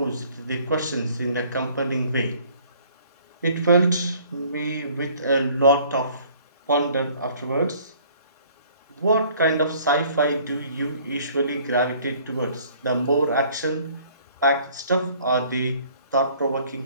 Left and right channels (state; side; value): inverted; both; correlation -0.56